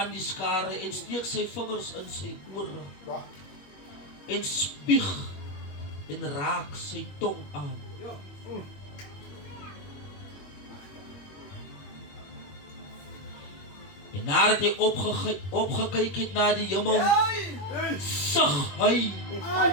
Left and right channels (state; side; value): late; right; 21 ms